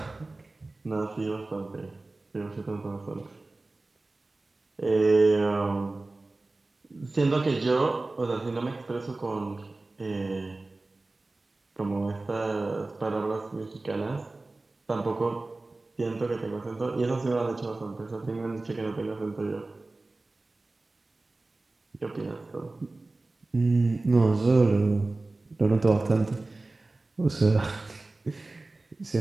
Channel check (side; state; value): left; quieter; 3.2 dB